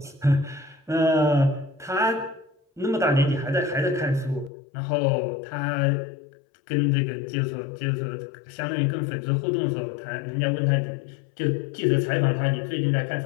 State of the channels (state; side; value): drops out; right; at 4.5 s